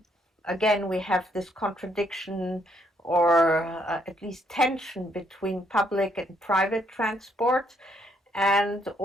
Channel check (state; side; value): normal; both; correlation 0.71